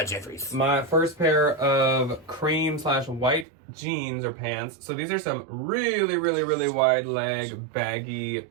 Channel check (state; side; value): drops out; left; at 3.5 s